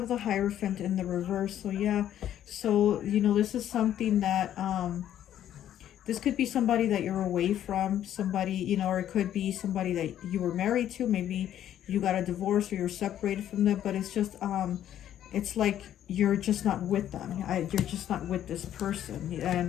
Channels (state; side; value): quieter; right; 11.1 dB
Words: the Hierophant in the reverse. So yeah, so, you know, this is something that, this could be somebody that you're away from, somebody, you know, or it could be somebody that you were married to. Maybe you got a divorce or you're separated from them, but it's just, it's like you're just not with them. You're just not with this person, and